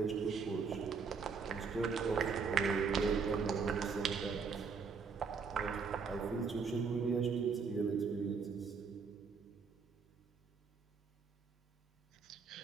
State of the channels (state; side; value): quieter; left; 5.4 dB